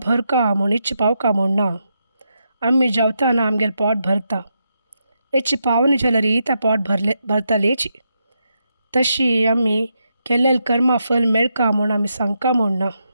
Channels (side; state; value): both; inverted; correlation -0.83